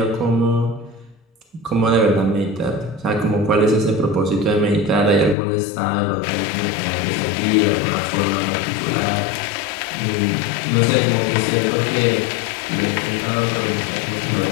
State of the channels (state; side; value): drops out; right; at 5.4 s